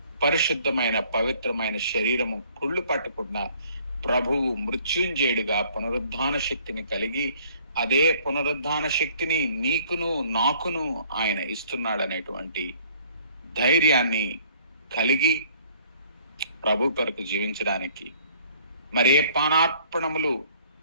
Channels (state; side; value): inverted; both; correlation -0.58